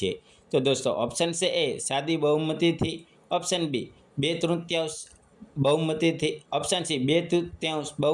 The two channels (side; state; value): both; identical; correlation 1.00